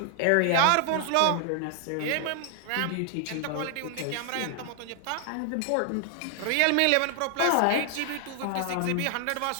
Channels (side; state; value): both; different; correlation 0.00